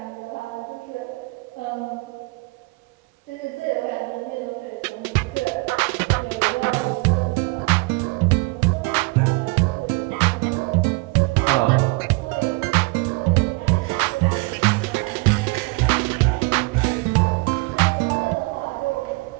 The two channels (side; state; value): left; quieter; 26.8 dB